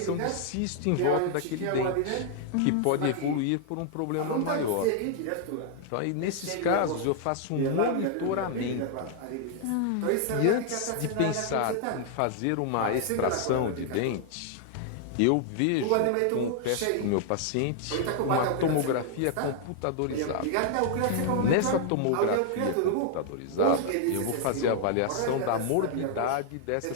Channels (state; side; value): different; both; correlation -0.01